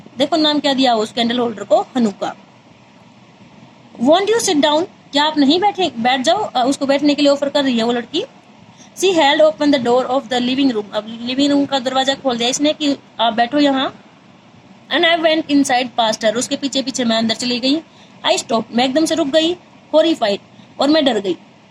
देखो नाम क्या दिया उस कैंडल होल्डर को, Hanukkah. Want you sit down? क्या आप नहीं बैठ जाओ? उसको बैठने के लिए ऑफर कर रही है वो लड़की। She held open the door of the living room. अब लिविंग रूम का दरवाजा खोल दिया इसने कि आप बैठो यहाँ। And I went inside past her. उसके पीछे पीछे मैं अंदर चली गई। आई स्टॉप, मैं एकदम से रुक गई। हॉरिफाइड, और मैं डर गई।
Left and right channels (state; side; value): identical; both; correlation 1.00